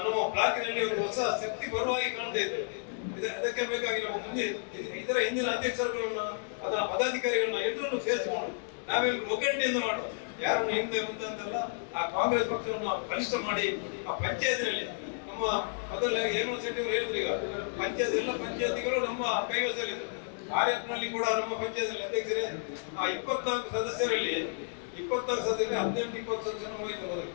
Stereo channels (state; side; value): silent; right; digital silence